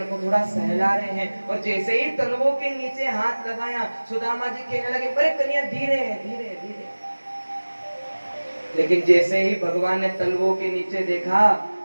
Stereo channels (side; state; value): both; inverted; correlation -1.00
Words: को थोड़ा सहला रहे हैं। और जैसे ही तलवों के नीचे हाथ लगाया सुदामा जी कहने लगे, अरे कन्हैया धीरे धीरे धीरे। लेकिन जैसे ही भगवान ने तलवों के नीचे देखा